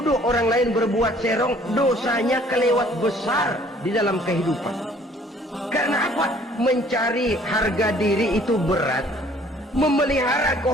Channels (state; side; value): normal; both; correlation 0.57